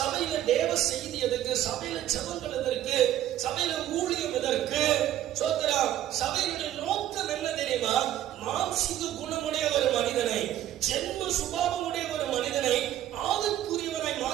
தேவ செய்தி எதுக்கு? சபையில ஜெபங்கள் எதற்கு? சபையில ஊழியம் எதற்கு? சபையினுடைய நோக்கம் என்ன தெரியுமா? மாம்சீக குணமுடைய ஒரு மனிதனை, ஜென்ம சுபாவமுடைய ஒரு மனிதனை ஆவிக்குரியவனை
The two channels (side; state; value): left; quieter; 12.4 dB